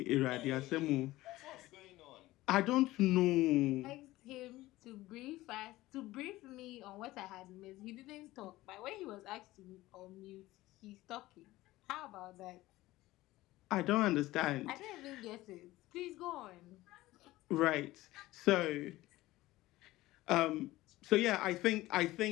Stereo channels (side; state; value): right; quieter; 17.6 dB